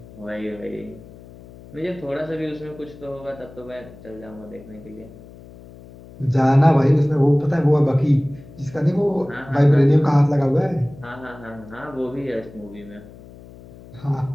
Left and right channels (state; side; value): noise; left; hum, 19 dB below the sound